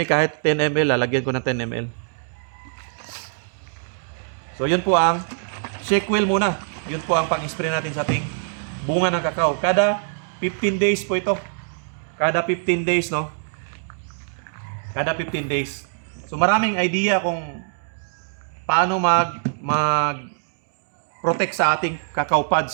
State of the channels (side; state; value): left; silent; digital silence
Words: kahit 10 ml, lalagyan ko ng 10 ml. So yun po ang shake wheel muna. Yun po ang pang-spray natin sa ating bunga ng kakao. Kada 15 days po ito. Kada 15 days, no? Kada 15 days. So maraming idea kung paano mag-protect sa ating cacao